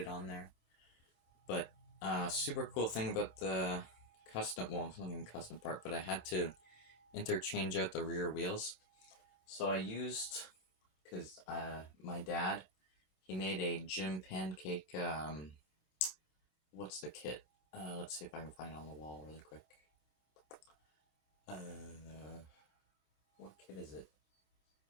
on there. But super cool thing about the custom, well, it's not even custom part, but I had to interchange out the rear wheels. So I used, because my dad, he made a Jim Pancake, what's the kit? Let's see if I can find it on the wall really quick. What kit is it?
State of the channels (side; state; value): right; late; 27 ms